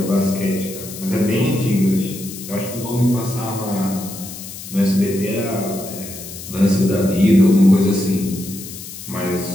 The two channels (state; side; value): noise; left; hiss, 12 dB below the sound